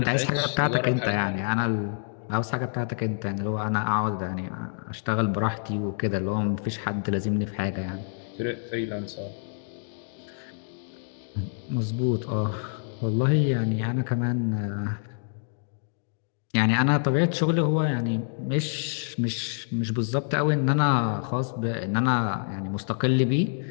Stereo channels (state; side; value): silent; right; digital silence